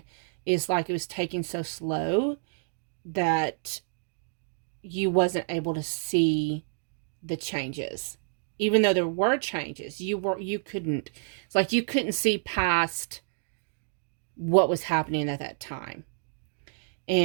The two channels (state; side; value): silent; left; digital silence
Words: is like it was taking so slow that you wasn't able to see the changes. Even though there were changes, you couldn't, it's like you couldn't see past what was happening at that time.